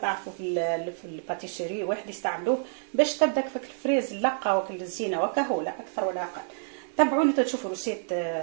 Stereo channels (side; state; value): left; silent; 59 dB below the other